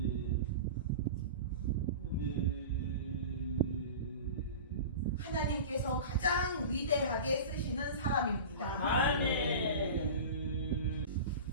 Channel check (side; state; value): both; inverted; correlation -0.32